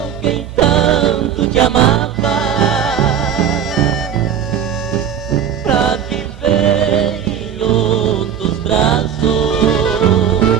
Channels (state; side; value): quieter; left; 8.7 dB